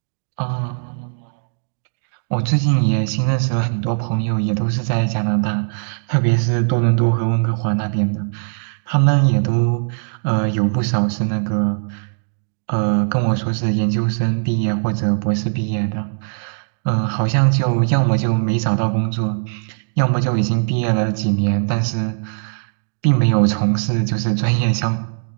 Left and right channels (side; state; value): left; silent; digital silence